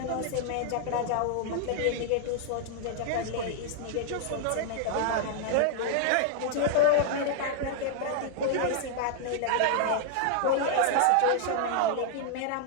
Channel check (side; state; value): both; different; correlation -0.01